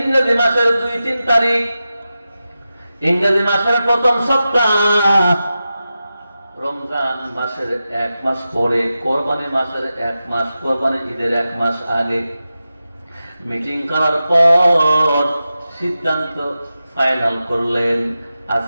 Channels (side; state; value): both; inverted; correlation -0.93